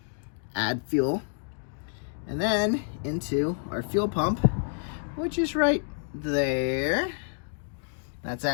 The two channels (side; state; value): right; silent; 59 dB below the other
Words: add fuel. And then into our fuel pump, which is right there. That's